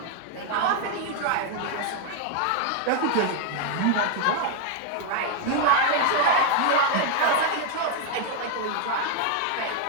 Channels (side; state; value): both; different; correlation 0.00